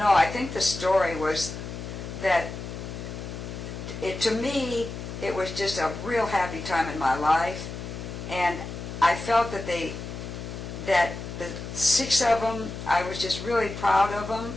I think the story was that to me, it was just a real happy time in my life, and I felt that the 6 of them, I was just really proud of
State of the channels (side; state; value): left; noise; hum, 8 dB below the sound